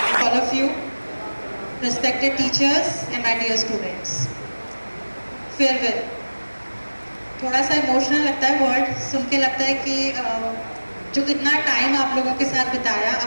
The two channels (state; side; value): inverted; both; correlation -1.00